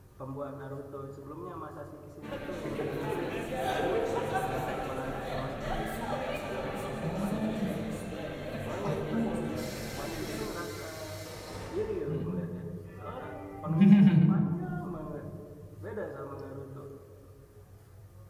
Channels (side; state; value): both; identical; correlation 1.00